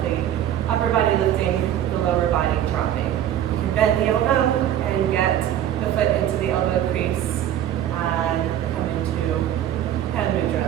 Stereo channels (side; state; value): left; quieter; 11.2 dB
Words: the upper body lifting, the lower body dropping. You can bend the elbow and get the foot into the elbow crease and come into hand